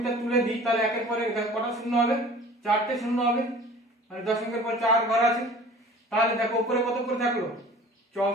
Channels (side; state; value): both; normal; correlation 0.45